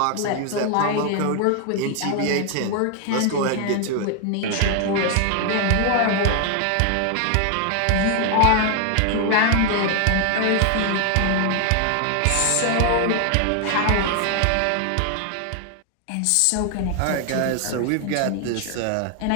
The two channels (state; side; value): different; both; correlation 0.00